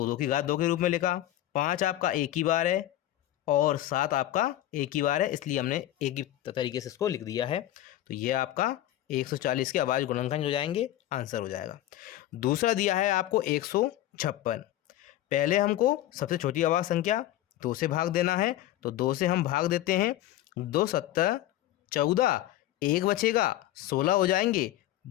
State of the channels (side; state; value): right; quieter; 13.8 dB